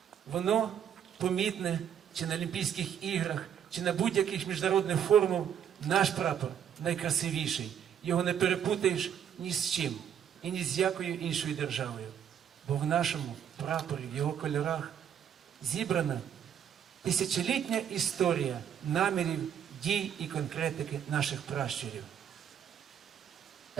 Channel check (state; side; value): quieter; left; 8.9 dB